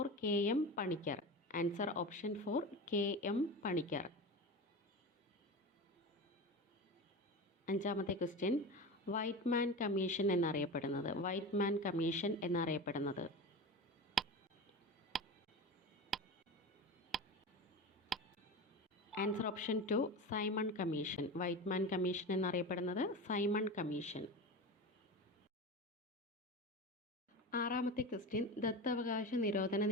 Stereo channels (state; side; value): normal; both; correlation 0.27